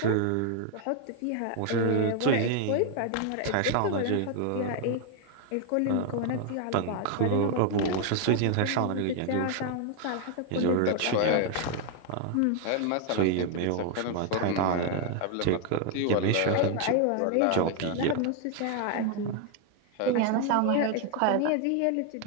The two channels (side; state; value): both; different; correlation 0.00